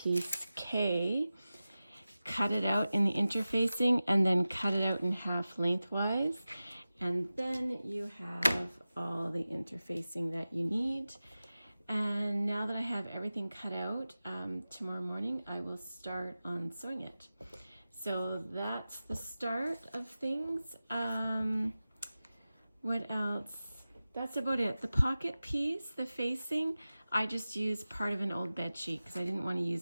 K, cut it out in the interfacing, and then cut it out in half lengthwise. And then you have all the interfacing that you need. And now that I have everything cut out, tomorrow morning I will start on sewing it. So that's the start of things. What else? That's about it. The pocket piece, the facing, I just used part of an old bed sheet because I didn't want to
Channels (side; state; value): both; inverted; correlation -0.95